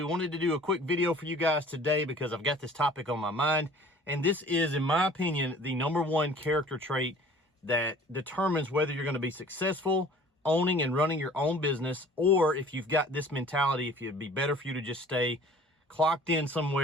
Wanted to do a quick video for you guys today because I've got this topic on my mind. And this is, in my opinion, the #1 character trait that determines whether you're going to be successful owning and running your own business, or if you've got this mentality, if it'd be better for you to just stay clocked in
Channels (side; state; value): both; normal; correlation 0.49